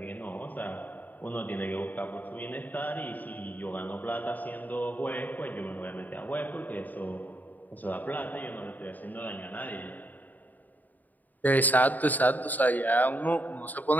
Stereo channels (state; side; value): late; right; 0.083 ms